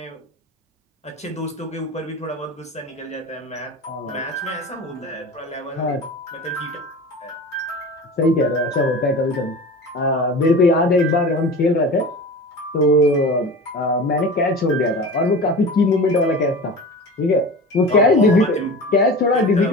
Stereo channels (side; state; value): both; normal; correlation 0.33